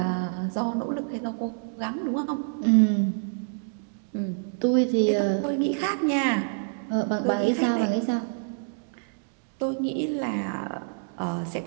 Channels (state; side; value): silent; left; digital silence